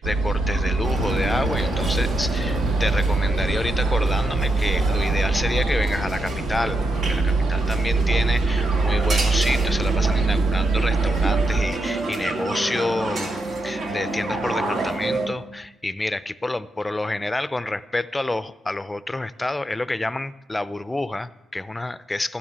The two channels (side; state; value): both; normal; correlation 0.83